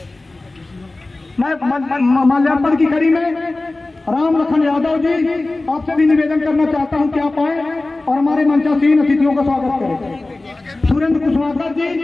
मैं माल्यार्पण की कड़ी में राम लखन यादव जी आपसे भी निवेदन करना चाहता हूं कि आप आए और हमारे मंचासीन अतिथियों का स्वागत करें। सुरेंद्र कुशवाहा जी,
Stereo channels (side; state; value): right; quieter; 3.0 dB